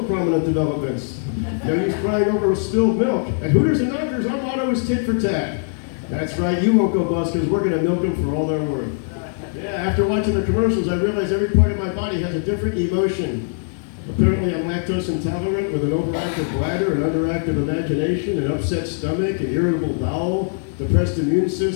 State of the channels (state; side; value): silent; right; digital silence